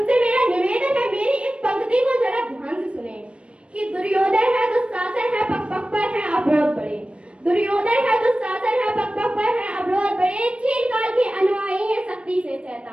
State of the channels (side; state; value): left; late; 0.059 ms